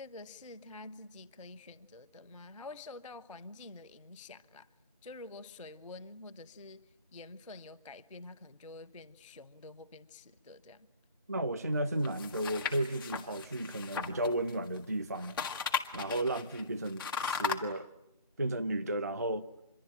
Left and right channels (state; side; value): inverted; both; correlation -0.46